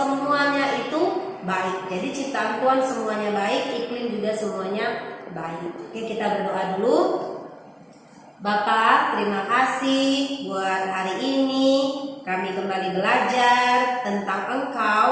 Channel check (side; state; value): both; identical; correlation 1.00